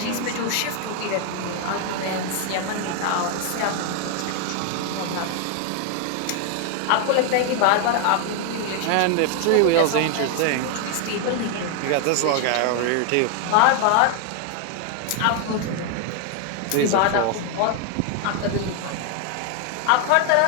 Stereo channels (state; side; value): different; both; correlation 0.00